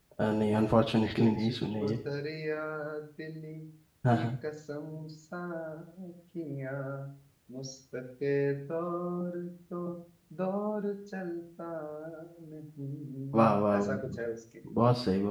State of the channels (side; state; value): both; identical; correlation 1.00